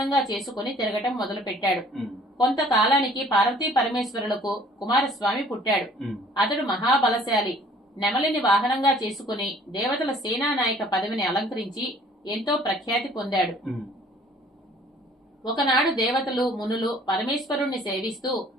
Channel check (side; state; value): both; normal; correlation 0.55